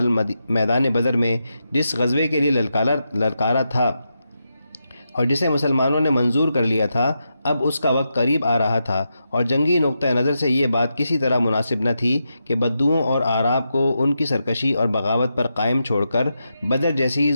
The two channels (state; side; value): inverted; both; correlation -0.86